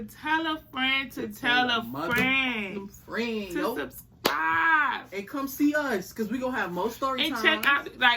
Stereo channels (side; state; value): both; identical; correlation 1.00